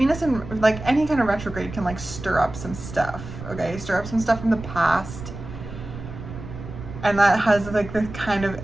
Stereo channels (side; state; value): right; noise; rumble, 11 dB below the sound